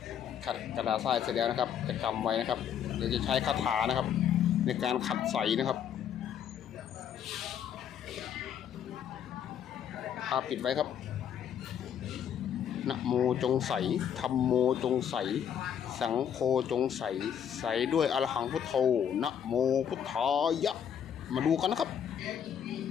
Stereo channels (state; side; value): quieter; right; 8.8 dB